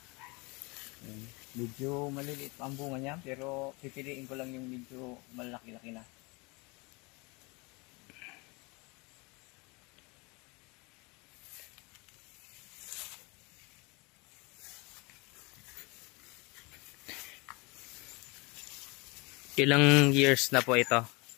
Medyo maliliit pa ang bunga niya, pero pipiliin ko lang yung medyo malaki-laki na. Ilang years na po ito?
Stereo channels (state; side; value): quieter; right; 27.4 dB